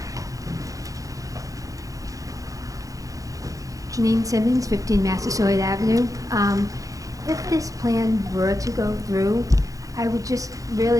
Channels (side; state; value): left; late; 0.17 ms